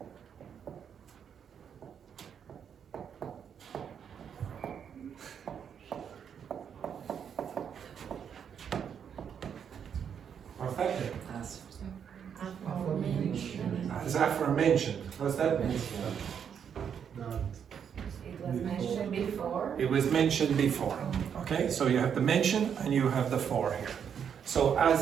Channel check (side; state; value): left; quieter; 7.8 dB